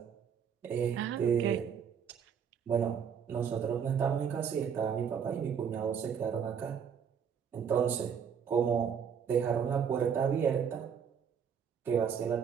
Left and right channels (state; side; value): quieter; left; 7.4 dB